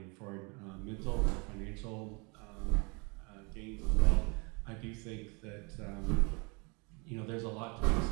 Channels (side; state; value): left; quieter; 31.1 dB